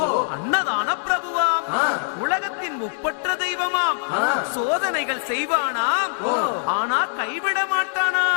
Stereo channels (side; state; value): right; silent; digital silence